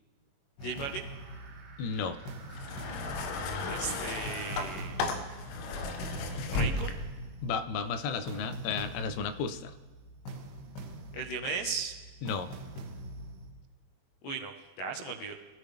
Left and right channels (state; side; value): late; right; 21 ms